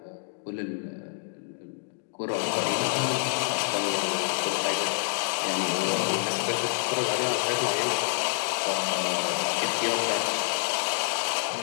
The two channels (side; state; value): right; silent; digital silence